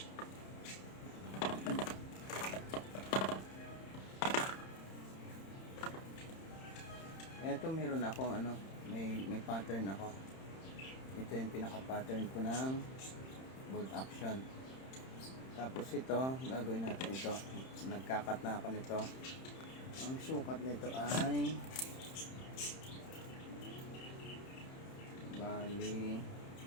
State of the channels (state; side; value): late; right; 31 ms